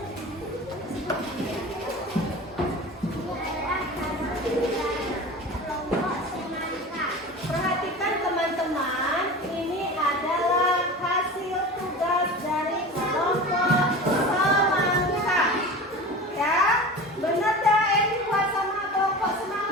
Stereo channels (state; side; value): normal; both; correlation 0.33